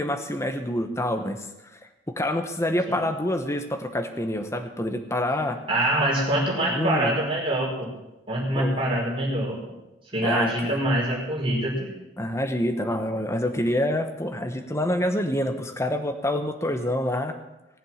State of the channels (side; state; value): both; normal; correlation 0.58